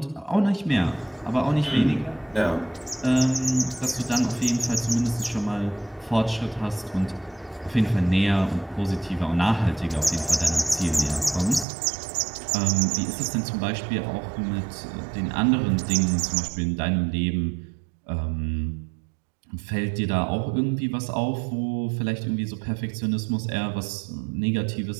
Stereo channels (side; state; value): left; drops out; at 11.7 s